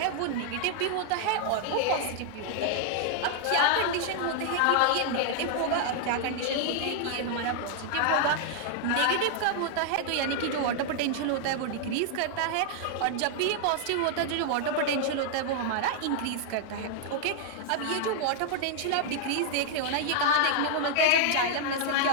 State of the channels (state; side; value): different; both; correlation 0.00